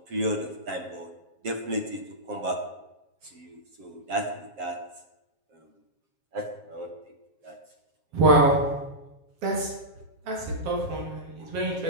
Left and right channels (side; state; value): left; late; 7.4 ms